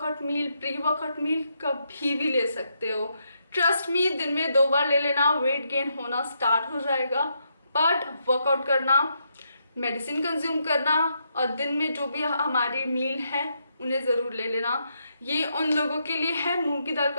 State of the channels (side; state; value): both; inverted; correlation -0.79